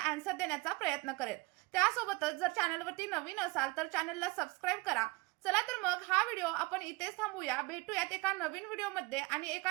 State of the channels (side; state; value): left; quieter; 24.5 dB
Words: आन्सर देण्याचा प्रयत्न करेल. त्यासोबतच जर चॅनलवरती नवीन असाल तर चॅनलला सबस्क्राईब करा. चला तर मग हा व्हिडिओ आपण इथेच थांबूया. भेटूयात एका नवीन व्हिडिओमध्ये आणि